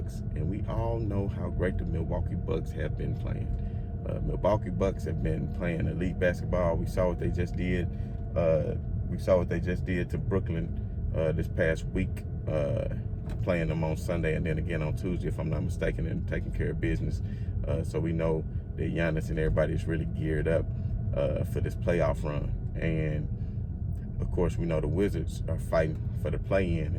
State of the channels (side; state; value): both; identical; correlation 1.00